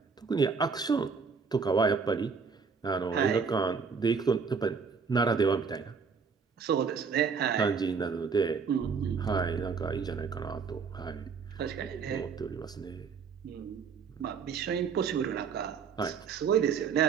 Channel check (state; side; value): quieter; left; 5.6 dB